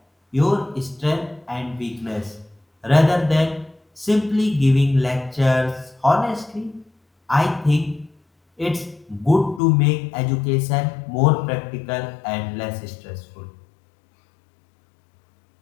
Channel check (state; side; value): drops out; right; at 9.6 s